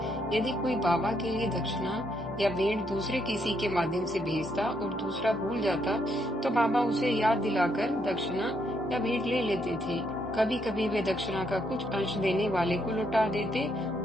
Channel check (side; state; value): both; normal; correlation 0.75